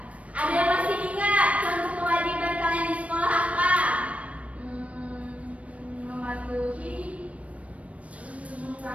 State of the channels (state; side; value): late; left; 0.065 ms